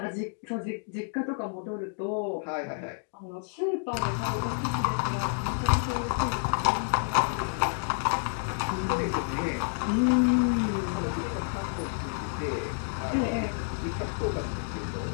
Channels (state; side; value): silent; right; 58 dB below the other